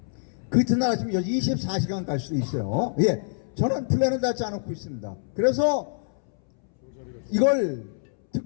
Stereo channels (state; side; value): silent; right; 61 dB below the other